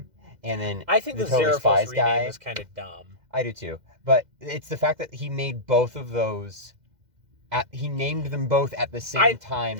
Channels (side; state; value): left; late; 2.1 ms